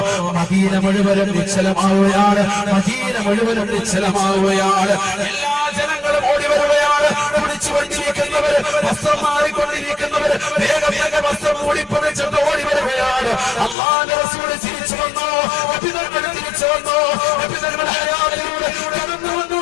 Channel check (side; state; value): right; drops out; at 13.8 s